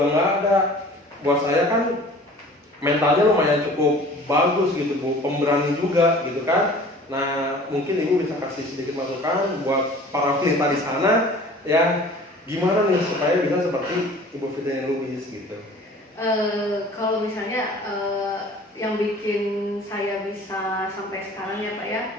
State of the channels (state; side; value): normal; both; correlation 0.46